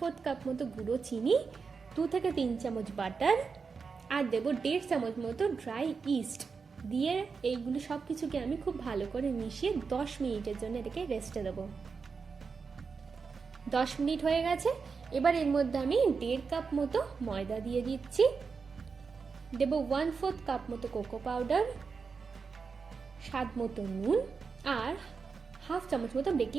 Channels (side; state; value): left; quieter; 5.2 dB